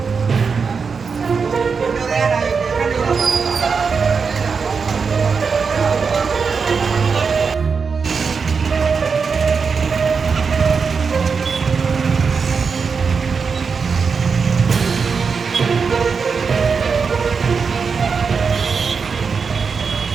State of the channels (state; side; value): quieter; left; 5.4 dB